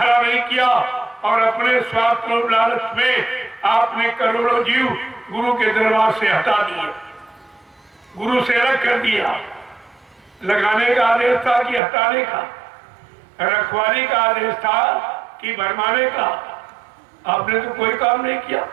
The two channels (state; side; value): drops out; left; at 11.8 s